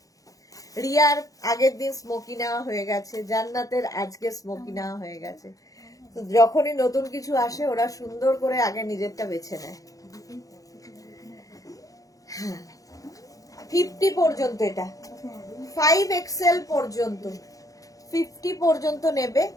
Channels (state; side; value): late; right; 0.17 ms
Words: রিয়ার আগের দিন স্মোকি নেওয়া হয়ে গেছে, জান্নাতের আজকে স্মোকি নেওয়া হয়ে গেছে। তো যখনই নতুন কিছু আসে ওরা সুন্দর করে আগে নিজেরটা বেছে নেয়। 50 পর্যন্ত, এটা 5XL পর্যন্ত, 50 পর্যন্ত নেবে।